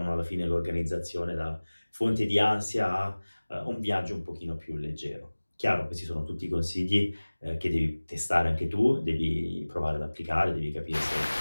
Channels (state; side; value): inverted; both; correlation -1.00